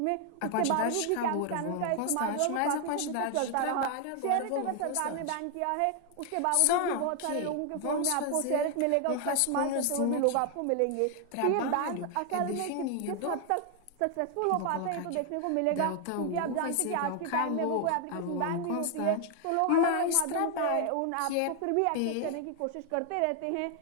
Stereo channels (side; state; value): both; different; correlation 0.00